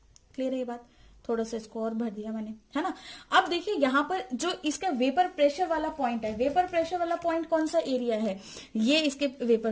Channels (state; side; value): identical; both; correlation 1.00